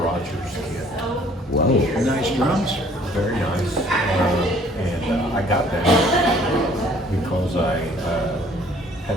Rogers kit. Wow. Nice drums. Very nice. And I got that because I had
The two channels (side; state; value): both; normal; correlation 0.57